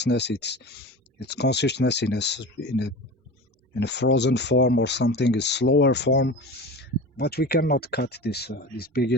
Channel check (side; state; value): both; normal; correlation 0.32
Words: It's consciousness in a frozen form or something, a slower form. But we cannot cut this big